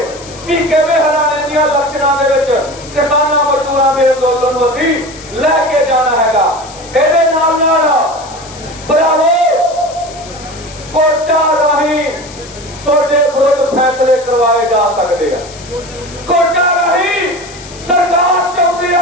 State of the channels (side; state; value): left; noise; hiss, 18 dB below the sound